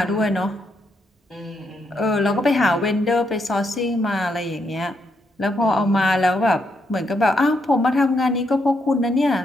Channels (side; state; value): both; normal; correlation 0.79